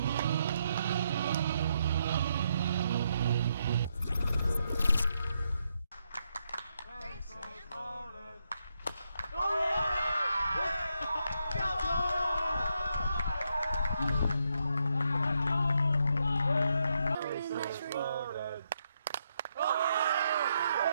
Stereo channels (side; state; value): both; inverted; correlation -0.80